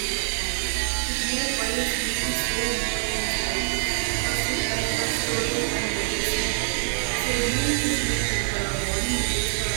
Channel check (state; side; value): silent; left; digital silence